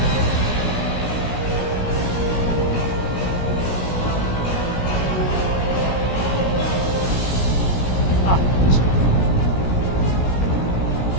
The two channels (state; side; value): late; right; 17 ms